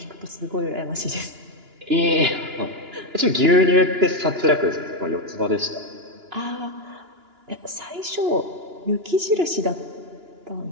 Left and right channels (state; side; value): late; left; 2.9 ms